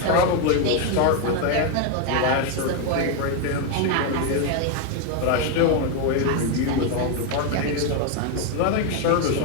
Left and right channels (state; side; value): different; both; correlation 0.01